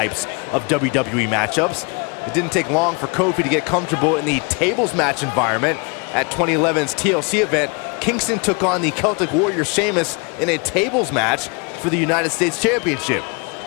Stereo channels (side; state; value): right; quieter; 31.8 dB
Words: of WWE matchups. It didn't take long for Kofi to get comfortable in the tables match environment. At 2011's TLC event, Kingston took on the Celtic Warrior Sheamus in a tables match for the United States Championship.